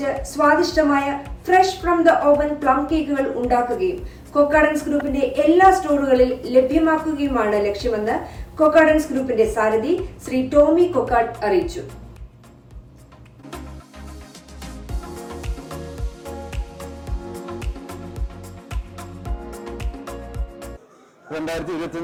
സ്വാദിഷ്ടമായ fresh from the oven plum കേക്കുകൾ ഉണ്ടാക്കുകയും കൊക്കാഡൻസ് ഗ്രൂപ്പിന്റെ എല്ലാ സ്റ്റോറുകളിൽ ലഭ്യമാക്കുകയുമാണ് ലക്ഷ്യമെന്ന് കൊക്കാഡൻസ് ഗ്രൂപ്പിന്റെ സാരഥി ശ്രീ ടോമി കൊക്കാഡ് അറിയിച്ചു.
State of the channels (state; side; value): identical; both; correlation 1.00